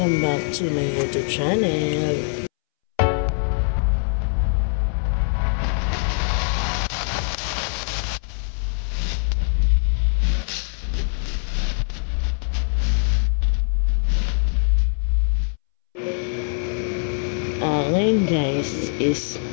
back to my YouTube channel. Ngayon guys is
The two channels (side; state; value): right; silent; 63 dB below the other